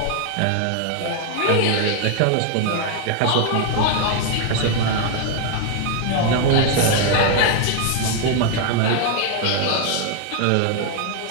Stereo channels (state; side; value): different; both; correlation 0.00